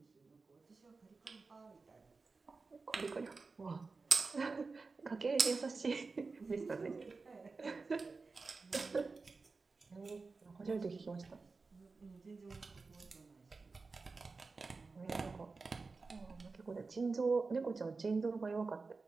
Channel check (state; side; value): quieter; left; 4.1 dB